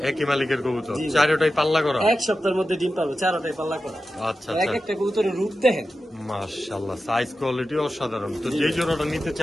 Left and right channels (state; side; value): normal; both; correlation 0.92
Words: একই মালিকের কবুতর, জি। চারটাই পাল্লা করা। এক সপ্তাহের মধ্যে ডিম পাবো, 4টাই পাল্লা করা। আচ্ছা এক আচ্ছা, একটা কবুতরের রূপ দেখেন। মাশাআল্লাহ, সাইজ কোয়ালিটি অসাধারণ। তো যে জোড়াটা নিতে